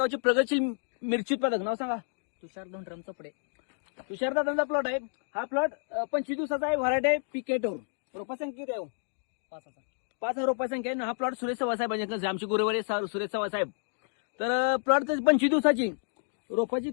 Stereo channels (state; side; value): silent; right; digital silence